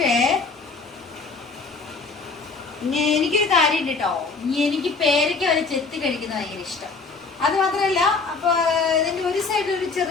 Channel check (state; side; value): quieter; right; 4.2 dB